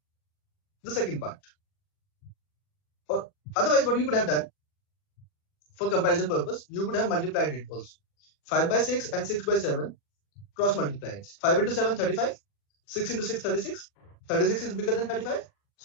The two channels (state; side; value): late; right; 40 ms